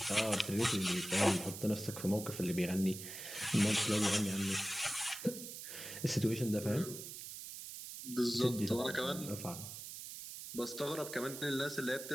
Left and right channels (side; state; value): right; noise; hiss, 10 dB below the sound